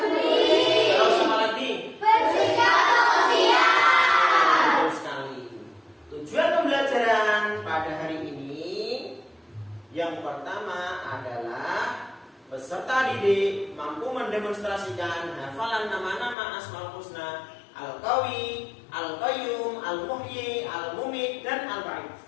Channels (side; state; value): right; drops out; at 16.4 s